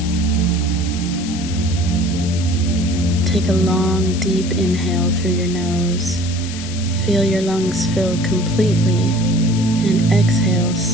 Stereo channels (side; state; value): left; noise; hiss, 12 dB below the sound